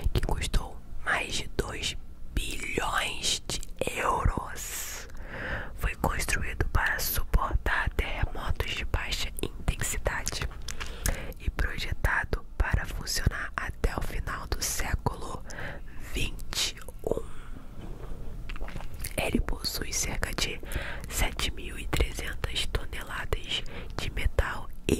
que custou mais de 2 bilhões de euros, foi construído para suportar terremotos de baixa intensidade e projetado para funcionar até o final do século XXI. Ele possui cerca de 7.300 toneladas de metal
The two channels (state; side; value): identical; both; correlation 1.00